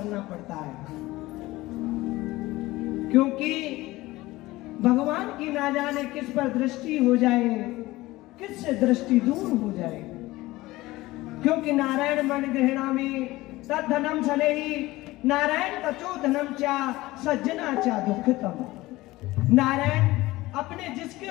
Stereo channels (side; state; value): right; quieter; 18.8 dB